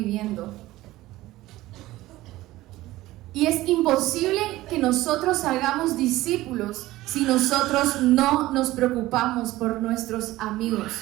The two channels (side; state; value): left; quieter; 17.0 dB